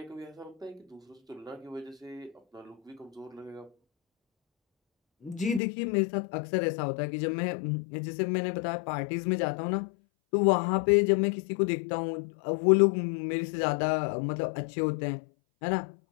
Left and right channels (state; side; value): drops out; right; at 5.6 s